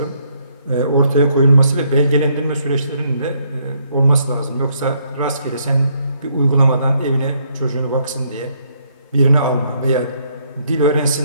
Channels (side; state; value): both; inverted; correlation -0.70